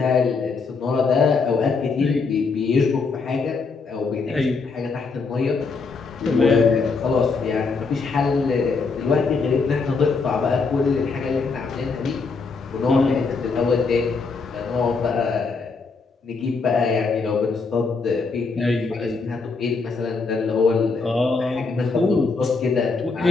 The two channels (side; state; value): right; quieter; 4.5 dB